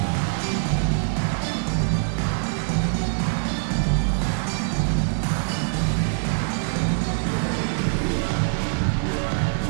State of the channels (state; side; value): silent; left; digital silence